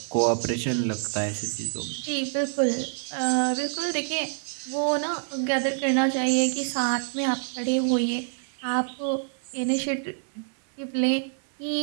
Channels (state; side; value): silent; left; 60 dB below the other